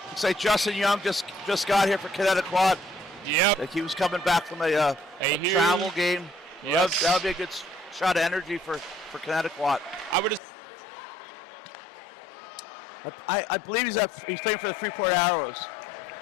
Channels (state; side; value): drops out; right; at 10.4 s